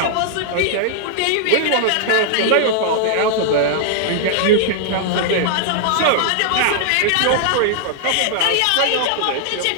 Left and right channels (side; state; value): both; different; correlation -0.01